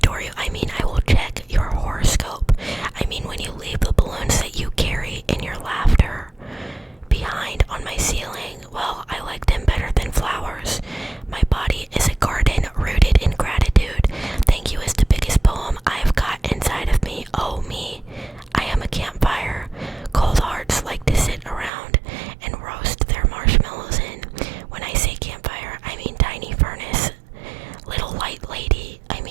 you, I mean I will check your horoscope. I mean when you leave the balloons that you carry in your laughter behind on my ceiling, well, I like them better than flowers. My body is a garden rooted in gratitude. Thank you is the biggest poem I've got inside of me. Oh me, I am a campfire. Cold hearts like to sit around and roast their marshmallows in. When I say campfire, I mean tiny furnace. Little light lady, I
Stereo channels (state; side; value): drops out; left; at 21.7 s